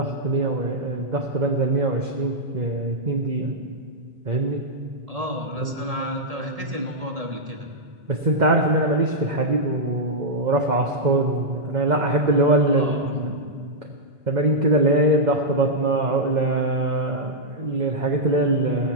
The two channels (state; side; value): late; left; 1.7 ms